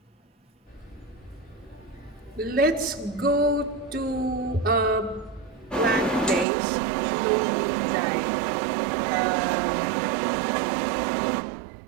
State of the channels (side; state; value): left; drops out; at 6.5 s